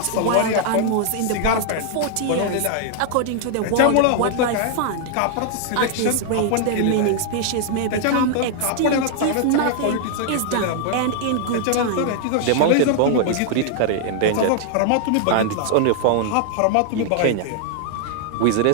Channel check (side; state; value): both; different; correlation -0.01